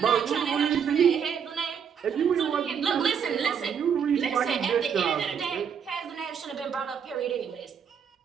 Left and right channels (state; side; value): quieter; left; 7.4 dB